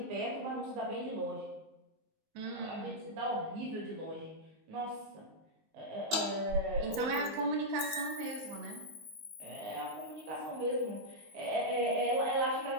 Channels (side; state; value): left; late; 19 ms